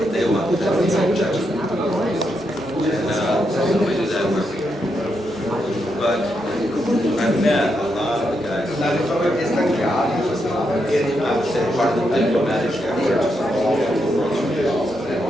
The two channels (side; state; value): both; normal; correlation 0.82